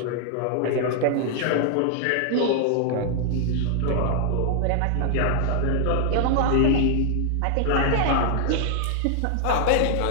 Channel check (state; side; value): different; both; correlation 0.00